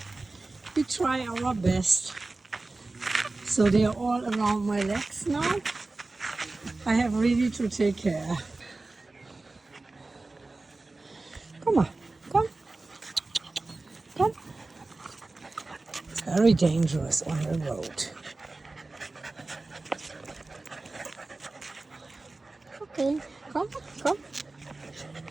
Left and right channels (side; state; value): left; quieter; 3.3 dB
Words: we try our best. So they are all around my legs now. I have really to take care. Come on, come, come. It's very dangerous on the road. Okay, come, come,